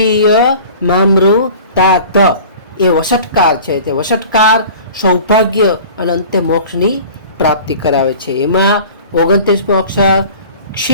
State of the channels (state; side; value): inverted; both; correlation -0.42